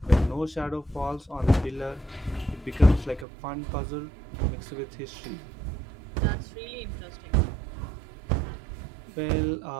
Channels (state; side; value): drops out; left; at 3.2 s